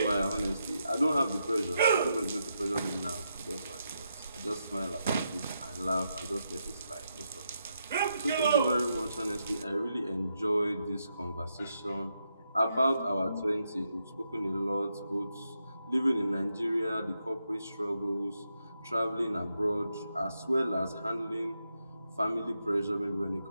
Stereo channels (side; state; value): both; inverted; correlation -0.82